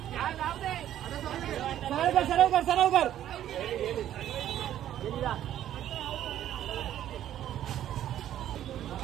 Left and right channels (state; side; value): quieter; left; 11.6 dB